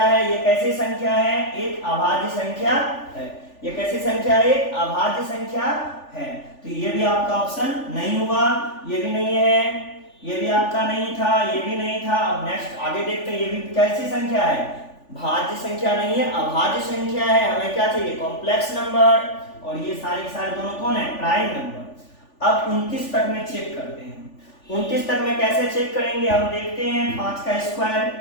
है, ये कैसी संख्या है, एक अभाज्य संख्या है। ये कैसी संख्या है, एक अभाज्य संख्या है। तो ये भी आपका ऑप्शन नहीं हुआ, ये भी नहीं है, ये भी आपका नहीं था, ये भी नहीं था। अब नेक्स्ट आगे देखते हैं, ये भी कैसी संख्या है, भाज्य संख्या नहीं है, अभाज्य संख्या है। हमें क्या चाहिए, कॉम्प्लेक्स नंबर, और ये सारे के सारे दोनों कौन है, प्राइम नंबर। अब 29 तक में चेक करते हैं। 29 तक में कैसे चेक करेंगे, हम देखते हैं 5 का स्क्वायर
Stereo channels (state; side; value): late; right; 3.4 ms